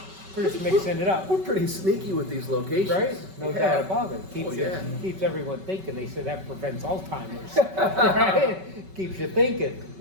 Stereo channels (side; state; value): left; late; 5.3 ms